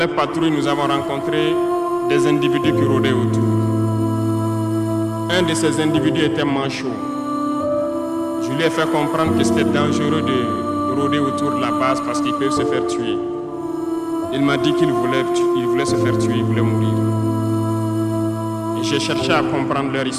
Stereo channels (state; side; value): identical; both; correlation 1.00